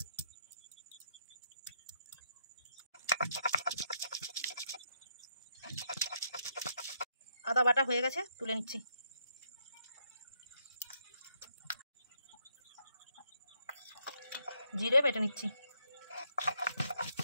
আদা বাটা হয়ে গেছে, তুলে নিচ্ছি। জিরে বেটে নিচ্ছি।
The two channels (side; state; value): both; inverted; correlation -0.75